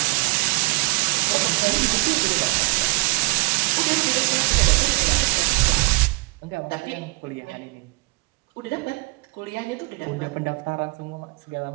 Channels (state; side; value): quieter; left; 27.9 dB